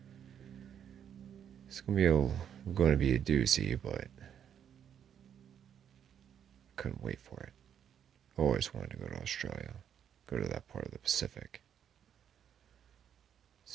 It's going to be a doozy, but I couldn't wait for it. I always wanted to go to Australia, go to that part of the Pacific,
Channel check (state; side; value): quieter; left; 8.9 dB